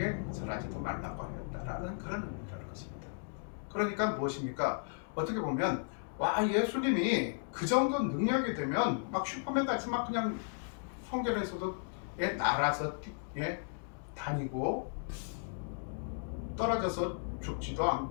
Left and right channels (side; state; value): right; silent; digital silence